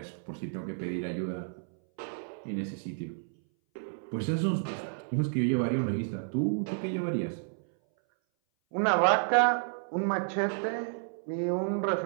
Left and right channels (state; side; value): silent; left; 57 dB below the other